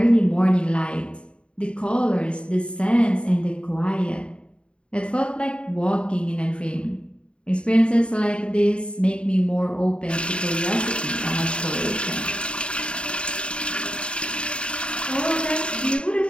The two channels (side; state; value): right; late; 0.055 ms